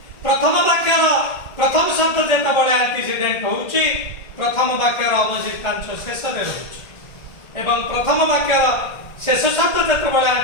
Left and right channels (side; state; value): right; late; 1.7 ms